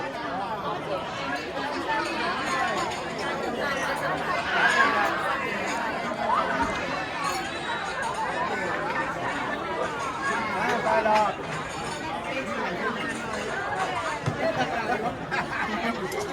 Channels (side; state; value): both; identical; correlation 1.00